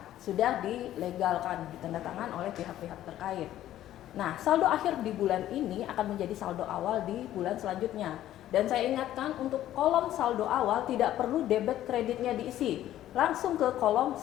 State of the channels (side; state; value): right; quieter; 12.9 dB